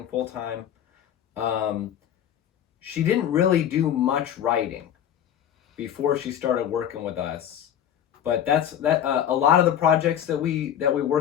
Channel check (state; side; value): quieter; right; 10.0 dB